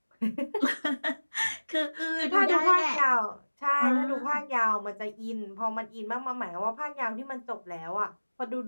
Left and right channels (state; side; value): inverted; both; correlation -1.00